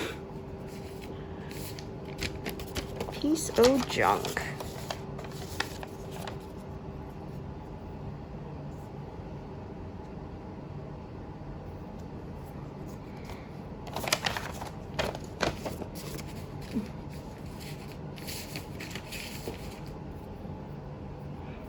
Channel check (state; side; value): identical; both; correlation 1.00